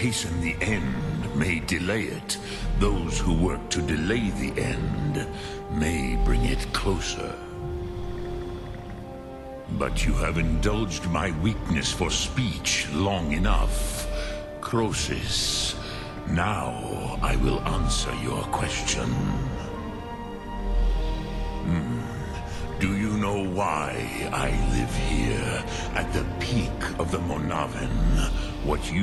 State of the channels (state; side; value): identical; both; correlation 1.00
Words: the end may delay it. Those who work to delay the end may bring it closer. But you have indulged my weakness for speech long enough. Croesus, now I will answer your question. Do you know why I live here, at the peak of the Monaven, what